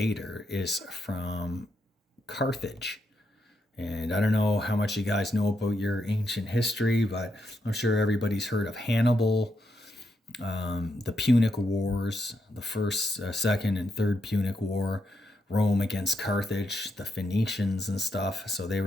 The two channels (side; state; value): both; normal; correlation 0.81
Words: is from Carthage. And I don't know how much you guys know about your ancient history, but I'm sure everybody's heard of Hannibal, the Punic Wars, the first, second, and third Punic War, Rome against Carthage, the Phoenicians and stuff. So they